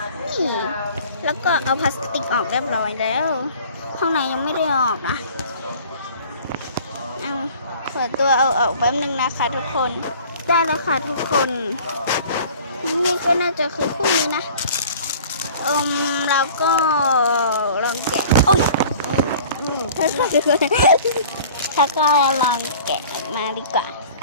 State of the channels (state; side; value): inverted; both; correlation -0.47